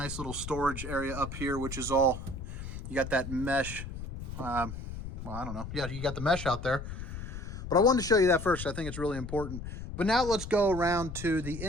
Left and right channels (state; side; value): noise; left; rumble, 8 dB below the sound